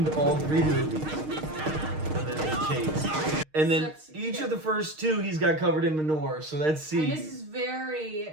in all 3 movies. And then they chase. And then each of the first 2, he's got covered in manure. So that's C. And this is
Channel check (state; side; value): late; left; 6.5 ms